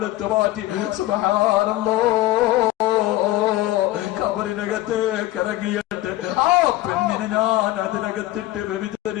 മാറ്റി സുബ്ഹാനല്ലാഹ് കബറിനകത്തേക്ക് ഇറങ്ങിയിട്ട് ആ പെണ്ണിനെ ഞാൻ അതിനകത്തിട്ട്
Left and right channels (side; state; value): right; quieter; 16.2 dB